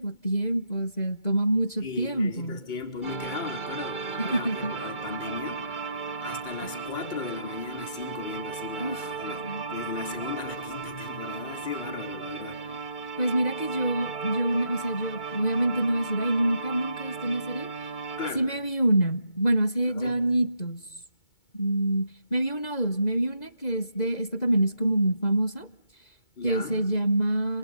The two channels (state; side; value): late; right; 2.2 ms